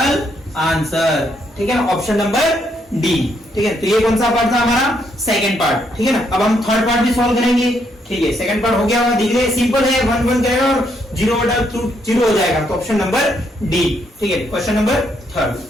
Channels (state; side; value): normal; both; correlation 0.74